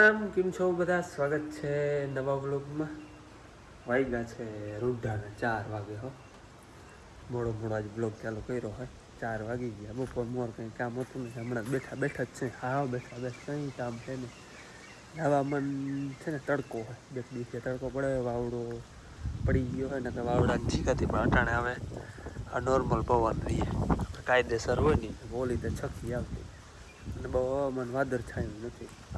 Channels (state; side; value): identical; both; correlation 1.00